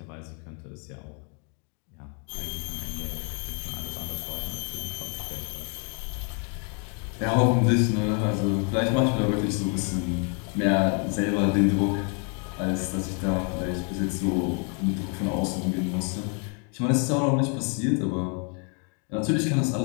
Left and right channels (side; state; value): right; quieter; 38.4 dB